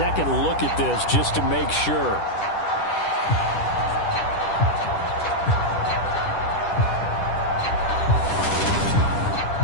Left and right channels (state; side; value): late; right; 10 ms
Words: look at this just to make sure.